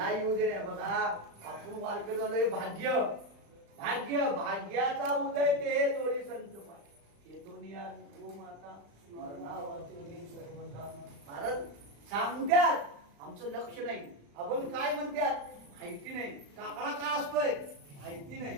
येऊ दे रे. बघा आपण वारकरी झालोय. भाग्य भाग्य भाग्याचा उदय ते जोडी संत पाय. महाराज सांगत्यात, आमचं लक्ष नाही. आपण काय म्हणतात माहिती नाही. काकडा का असतोय माहिती नाही.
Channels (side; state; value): left; late; 35 ms